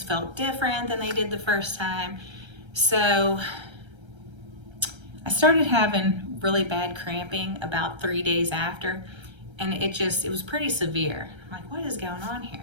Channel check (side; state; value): left; late; 1.3 ms